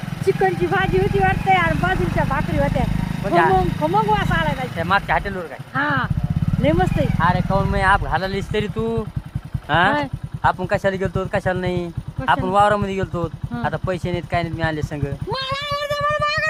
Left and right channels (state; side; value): identical; both; correlation 1.00